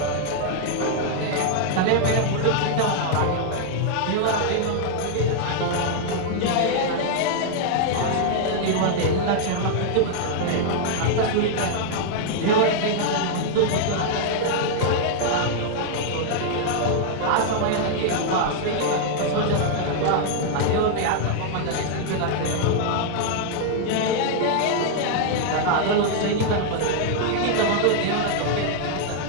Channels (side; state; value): both; different; correlation 0.00